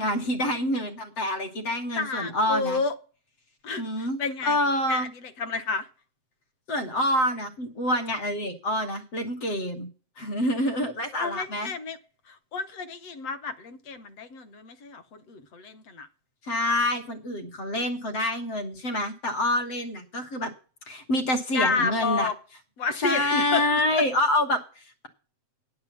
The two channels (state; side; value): late; right; 7.7 ms